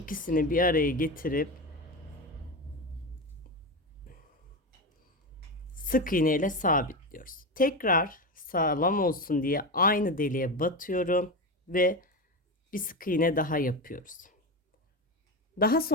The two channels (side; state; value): both; normal; correlation 0.18